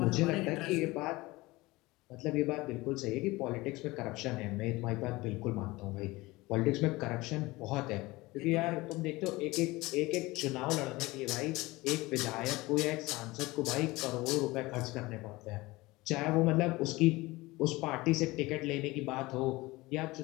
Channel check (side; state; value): right; quieter; 21.0 dB